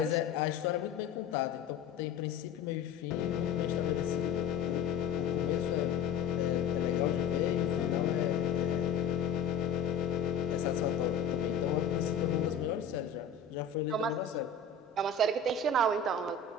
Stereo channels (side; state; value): right; quieter; 5.4 dB